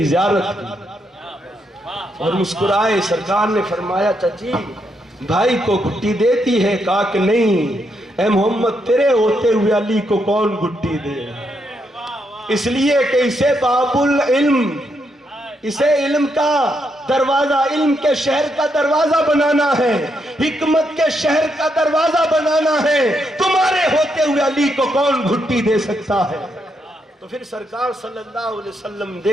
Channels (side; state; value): both; normal; correlation 0.79